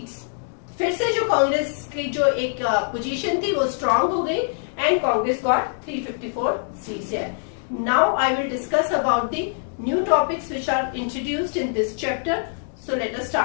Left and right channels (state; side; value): silent; right; digital silence